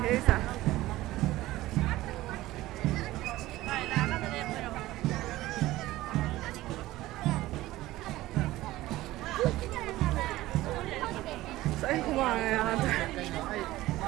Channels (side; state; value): left; quieter; 16.9 dB